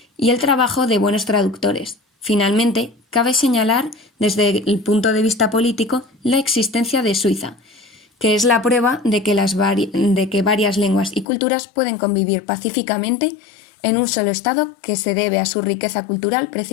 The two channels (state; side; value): drops out; right; at 11.2 s